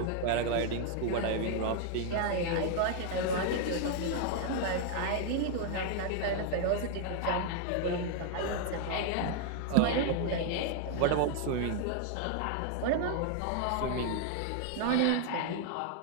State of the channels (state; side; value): different; both; correlation 0.00